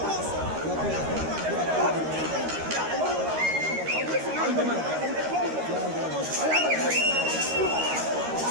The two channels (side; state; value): left; late; 13 ms